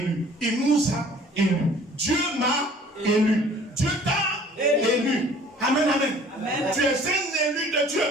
Il nous a élus. Dieu m'a élu. Dieu t'a élu. Amen, amen. Amen. Tu es un élu de Dieu.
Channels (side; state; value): both; normal; correlation 0.52